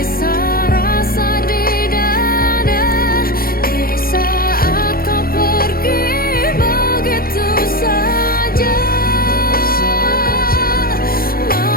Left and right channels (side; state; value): right; late; 0.43 ms